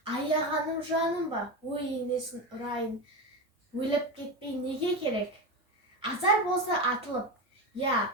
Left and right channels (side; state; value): both; normal; correlation 0.19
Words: аяғаным жаным ба, ой енесін ұрайын. Өліп кетпей неге керек? Азар болса атылып, я,